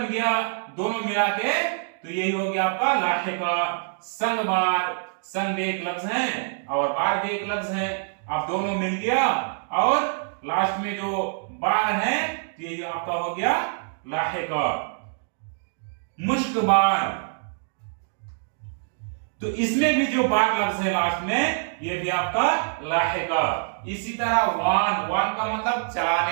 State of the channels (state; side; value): silent; left; digital silence